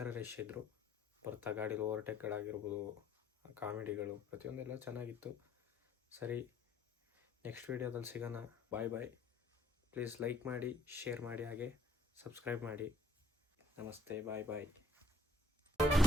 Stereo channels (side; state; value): both; normal; correlation 0.64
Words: ರಶ್ ಇದ್ದರು. ಬರ್ತಾ ಗಾಡೀಲಿ ಓವರ್ಟೇಕ್ಗಳಾಗಿರ್ಬೋದು, ಕಾಮಿಡಿಗಳು ಪ್ರತಿಯೊಂದೆಲ್ಲ ಚೆನ್ನಾಗಿತ್ತು. ಸರಿ, ನೆಕ್ಸ್ಟ್ ವೀಡಿಯೋದಲ್ಲಿ ಸಿಗೋಣ. ಬಾಯ್ ಬಾಯ್. ಪ್ಲೀಸ್ ಲೈಕ್ ಮಾಡಿ, ಶೇರ್ ಮಾಡಿ, ಹಾಗೆ ಸಬ್ಸ್ಕ್ರೈಬ್ ಮಾಡಿ. ನಮಸ್ತೆ, ಬಾಯ್ ಬಾಯ್.